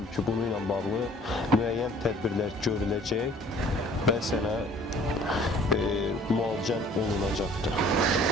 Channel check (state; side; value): normal; both; correlation 0.53